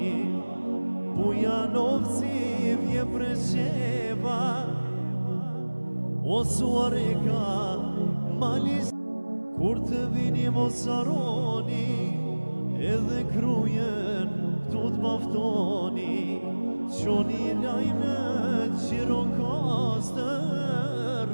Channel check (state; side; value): inverted; both; correlation -1.00